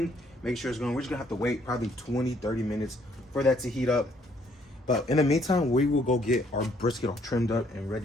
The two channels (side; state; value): both; normal; correlation 0.66